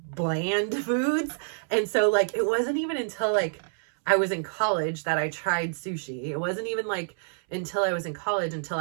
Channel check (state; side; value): silent; left; 60 dB below the other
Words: bland foods. And so like it wasn't even until like I was in college that I tried sushi. It wasn't even like until I was in college until